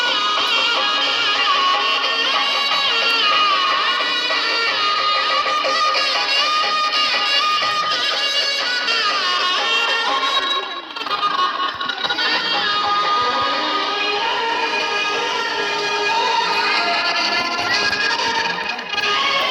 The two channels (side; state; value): both; identical; correlation 1.00